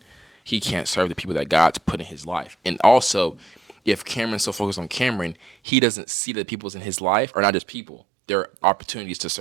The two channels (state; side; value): drops out; left; at 5.6 s